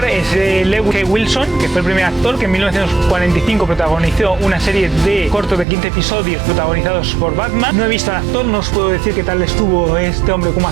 es Lewis K. Wilson, que fue el primer actor que en 1945 protagonizó una serie de cortos de 15 episodios protagonizados por Batman. No he visto al actor, no os puedo decir qué tal estuvo este hombre como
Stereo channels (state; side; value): drops out; left; at 5.7 s